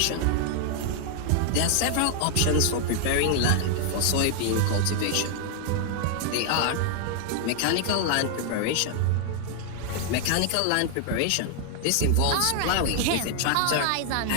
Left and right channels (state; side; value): different; both; correlation 0.00